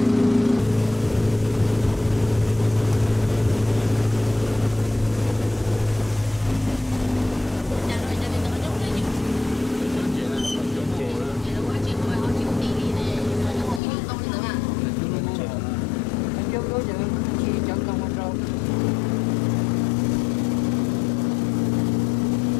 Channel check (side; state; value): right; drops out; at 13.8 s